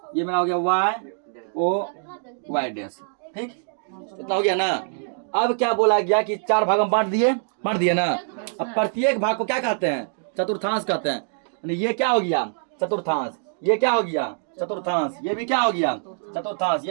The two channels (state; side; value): silent; left; digital silence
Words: ये मेरा हो गया वाई ओ वाई डैश, ठीक। इतना हो गया ना। अब क्या बोला गया कि 4 भाग में बांट दिए ना। अब प्रत्येक भाग को क्या कहते हैं चतुर्थांश कहते हैं। यानी ये क्या हो गया चतुर्थांश, ये क्या हो गया चतुर्थांश, ये भी क्या हो गया चतुर्थांश,